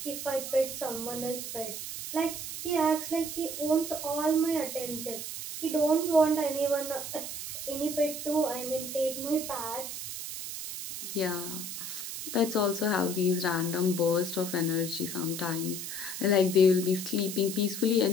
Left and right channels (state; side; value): noise; right; hiss, 7 dB below the sound